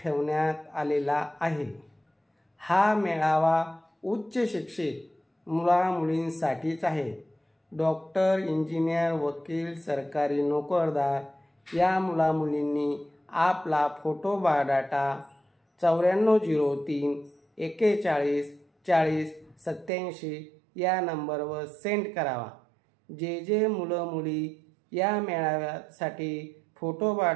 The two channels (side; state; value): left; drops out; at 19.9 s